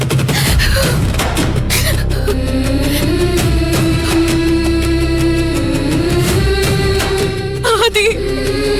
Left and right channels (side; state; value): both; identical; correlation 1.00